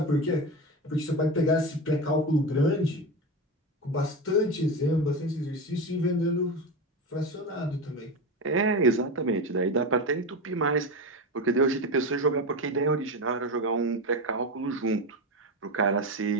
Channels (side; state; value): both; normal; correlation 0.19